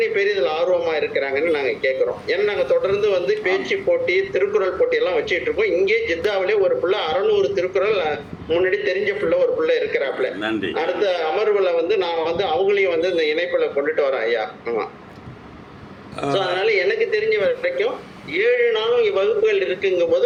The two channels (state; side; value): identical; both; correlation 1.00